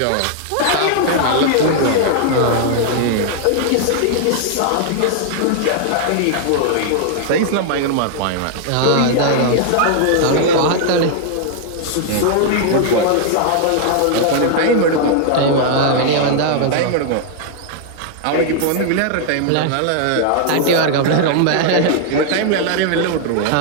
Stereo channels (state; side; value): different; both; correlation 0.00